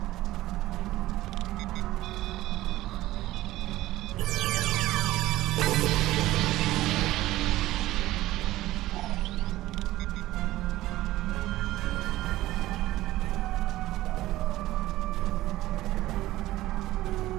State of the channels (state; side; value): quieter; left; 16.3 dB